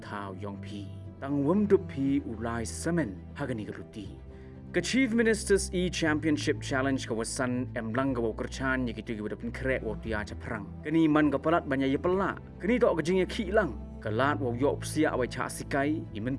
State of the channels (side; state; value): both; identical; correlation 1.00